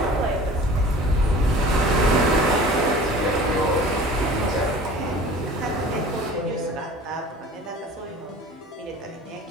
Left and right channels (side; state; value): both; normal; correlation 0.43